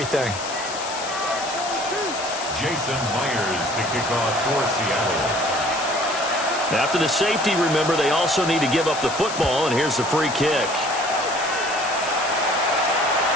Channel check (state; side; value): noise; left; hiss, 9 dB below the sound